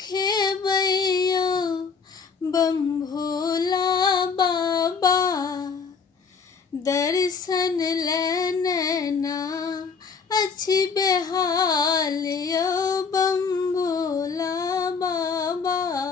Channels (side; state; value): right; quieter; 5.5 dB